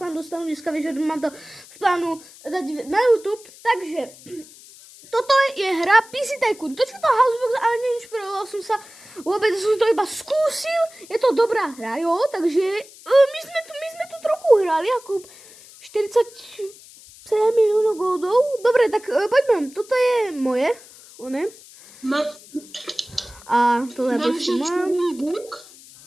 vám dostanú dneska večer, mám to v plánu dať na YouTube. Takže toto je hra PC Tycoon. To čo to Housebox, ale neinšpiroval som sa vôbec, som to iba skúsil. Je to dobrá hra, jo, takže my sme tu trochu hrali, ako 47 miliónov goldov. Dobre, tak poďme, toto je moje, one. A tohle prostě mám.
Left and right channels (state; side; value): noise; left; hiss, 21 dB below the sound